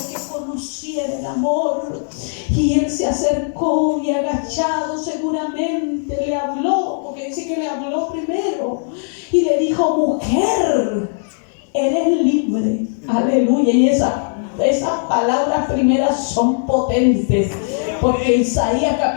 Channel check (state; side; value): silent; right; digital silence